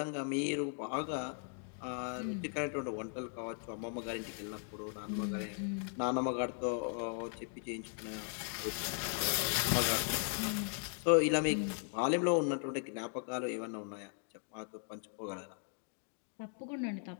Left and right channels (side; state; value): right; silent; 53 dB below the other